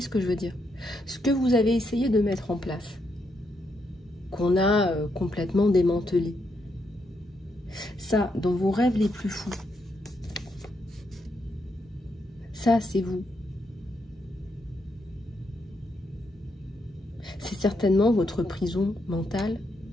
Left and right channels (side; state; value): both; normal; correlation 0.79